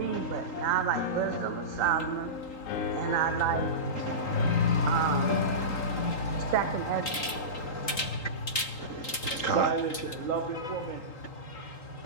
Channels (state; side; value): late; right; 3.8 ms